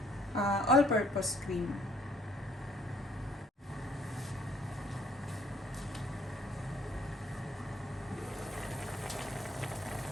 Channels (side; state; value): both; normal; correlation 0.63